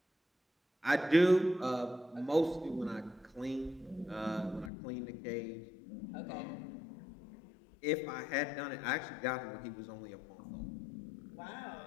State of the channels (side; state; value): right; drops out; at 4.7 s